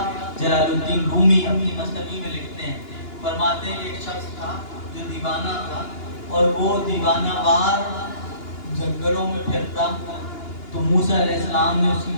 جلال الدین رومی اپنی مثنوی میں لکھتے ہیں۔ فرماتے ہیں کہ ایک شخص تھا جو دیوانہ تھا اور وہ دیوانہ وار جنگلوں میں پھرتا، تو موسیٰ علیہ السلام نے اس کی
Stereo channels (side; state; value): right; late; 2.9 ms